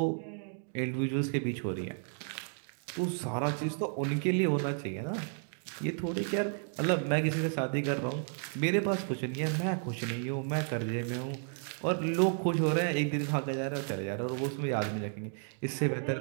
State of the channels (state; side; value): silent; left; 56 dB below the other